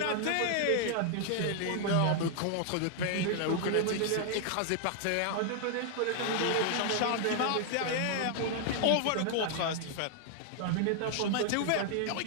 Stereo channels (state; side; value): different; both; correlation 0.00